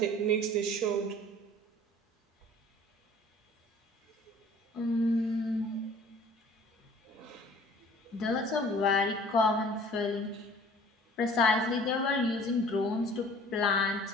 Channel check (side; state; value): both; normal; correlation 0.50